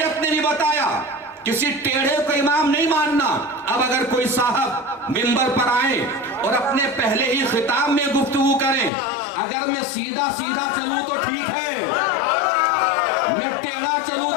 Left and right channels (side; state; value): right; drops out; at 8.9 s